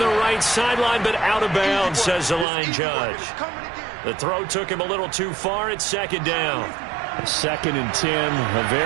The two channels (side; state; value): left; drops out; at 2.5 s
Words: right sideline, but out of bounds, says the line judge. The throw took him a little too far. It's second down. 2nd and 10. A